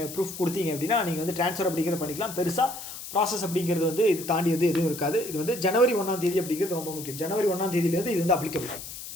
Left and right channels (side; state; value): left; noise; hiss, 11 dB below the sound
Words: ப்ரூஃப் கொடுத்தீங்க அப்படின்னா நீங்கள் வந்து ட்ரான்ஸ்ஃபர் அப்படிங்கிறத பண்ணிக்கலாம். பெருசாக ப்ராசஸ் அப்படிங்கிறது வந்து இது தாண்டி வந்து எதுவும் இருக்காது. இது வந்து ஜனவரி 1 அப்படிங்கிறது ரொம்ப முக்கியம். ஜனவரி 1 இது வந்து அப்ளிகபிள்.